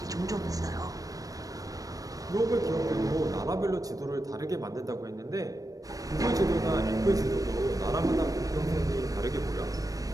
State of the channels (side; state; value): left; late; 0.17 ms